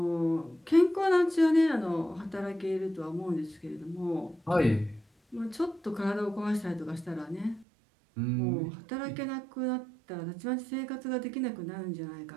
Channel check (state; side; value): drops out; left; at 7.7 s